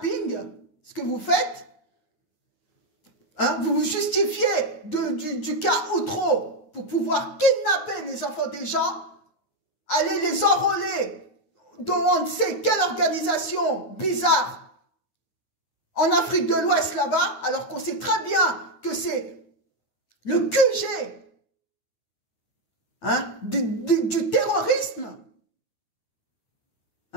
ce que vous faites. Hein? Vous vous justifiez du cas Outreau pour pouvoir kidnapper les enfants des gens, aller les enrôler dans on ne sait quelle organisation bizarre en Afrique de l'Ouest là-bas, alors qu'on sait très bien que c'est le QG hein, du terrorisme.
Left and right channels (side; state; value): right; late; 9.3 ms